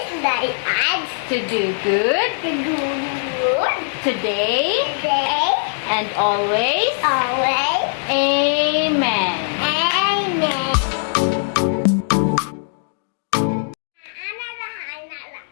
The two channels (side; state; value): right; silent; digital silence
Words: guide us to do good to do good today today. and always. Always. Amen. Amen.